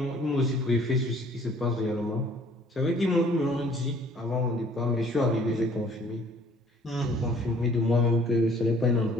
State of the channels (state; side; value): normal; both; correlation 0.56